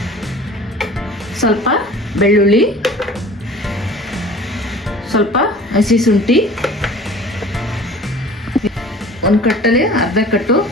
ಸ್ವಲ್ಪ ಬೆಳ್ಳುಳ್ಳಿ, ಸ್ವಲ್ಪ ಹಸಿ ಶುಂಠಿ, 1 ಕಟ್ಟಲ್ಲಿ ಅರ್ಧ ಕಟ್ಟು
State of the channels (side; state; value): both; normal; correlation 0.45